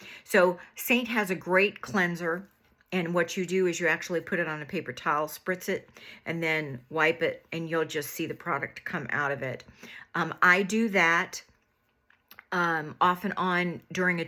So Seint has a great cleanser. And what you do is you actually put it on a paper towel, spritz it, and then wipe it, and you'll just see the product come out of it. I do that off and on during a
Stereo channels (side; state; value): both; identical; correlation 1.00